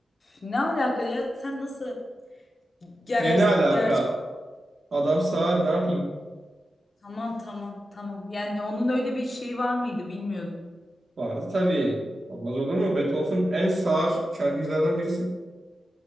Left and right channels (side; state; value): both; normal; correlation 0.91